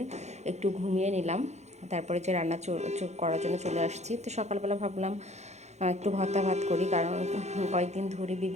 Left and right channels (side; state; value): left; late; 0.33 ms